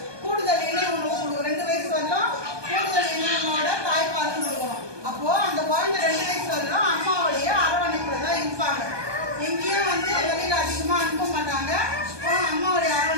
கூடுதல் இணை உணவு கொடுக்கும். 2 வயசு வரலாம் கூடுதல் இணை உணவோட தாய்ப்பால் கொடுக்கணும். அப்போ அந்த குழந்தை 2 வயசு வரலாம் அம்மாவுடைய அரவணைப்புல தான் இருப்பாங்க. எங்கேயும் வந்து வெளியில அதிகமா அனுப்ப மாட்டாங்க. அம்மாவுடைய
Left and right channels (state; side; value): late; left; 1.2 ms